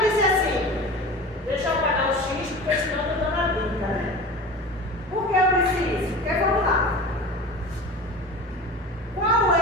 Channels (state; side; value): normal; both; correlation 0.34